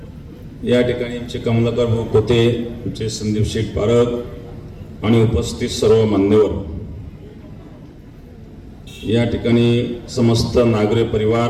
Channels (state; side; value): identical; both; correlation 1.00